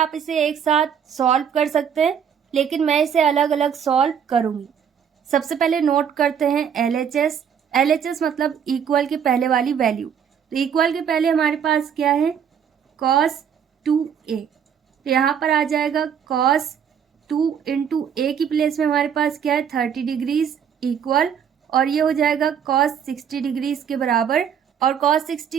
इसे एक साथ सॉल्व कर सकते हैं, लेकिन मैं इसे अलग अलग सॉल्व करूँगी। सबसे पहले नोट करते हैं LHS। LHS मतलब इक्वल के पहले वाली वैल्यू, तो इक्वल के पहले हमारे पास क्या है, cos 2a, तो यहाँ पर आ जाएगा cos 2 इंटू ए की प्लेस में हमारे पास क्या है 30 डिग्रीज इक्वल, और ये हो जाएगा cos 60 डिग्रीज के बराबर, और cos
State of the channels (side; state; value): left; quieter; 7.9 dB